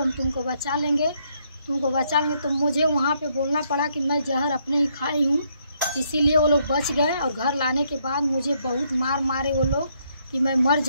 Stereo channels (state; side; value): inverted; both; correlation -0.73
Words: हम तुमको बचा लेंगे, तुमको बचा लेंगे। तो मुझे वहाँ पे बोलना पड़ा कि मैं जहर अपने ही खाई हूँ, इसीलिए वो लोग बच गए। और घर लाने के बाद मुझे बहुत मारे वो लोग कि मैं मर